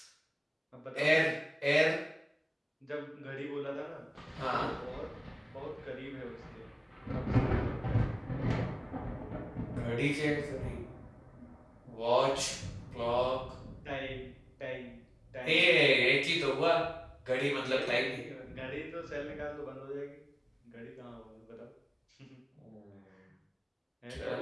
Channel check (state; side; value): identical; both; correlation 1.00